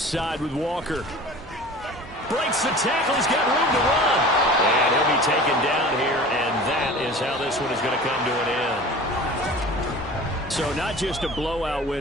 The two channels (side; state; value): both; normal; correlation 0.40